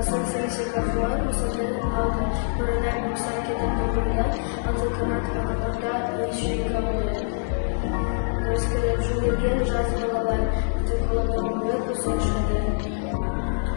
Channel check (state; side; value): silent; right; 62 dB below the other